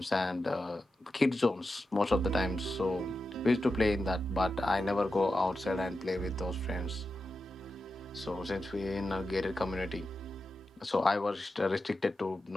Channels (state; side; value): normal; both; correlation 0.91